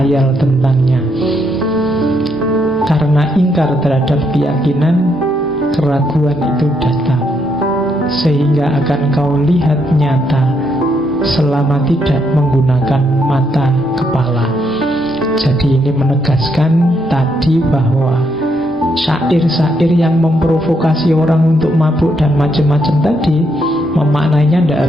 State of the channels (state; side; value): normal; both; correlation 0.76